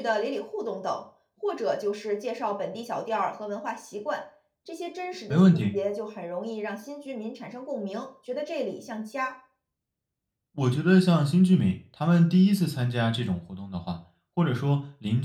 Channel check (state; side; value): identical; both; correlation 1.00